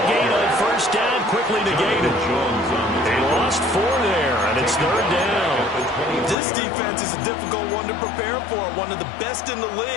gain on first down quickly negated. They lost 4 there, and it's third down. This defense is a difficult one to prepare for, one of the best in the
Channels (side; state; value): right; drops out; at 6.4 s